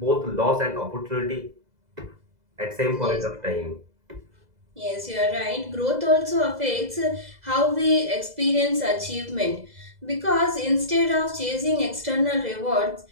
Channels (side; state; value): left; late; 2.0 ms